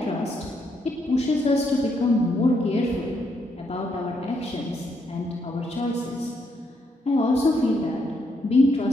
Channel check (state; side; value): normal; both; correlation 0.76